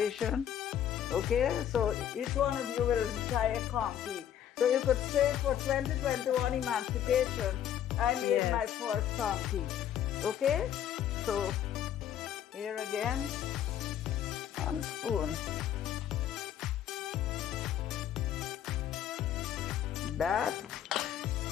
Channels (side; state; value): right; quieter; 10.3 dB